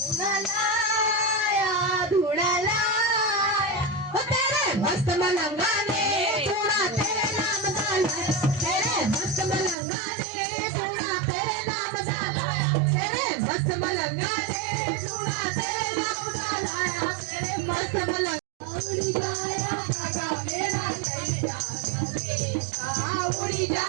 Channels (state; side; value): drops out; left; at 9.8 s